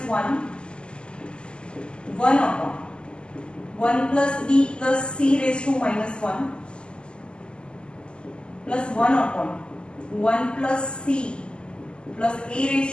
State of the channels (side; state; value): right; late; 0.049 ms